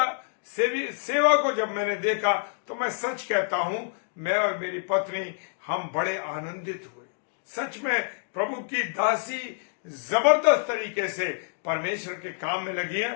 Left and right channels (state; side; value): silent; right; digital silence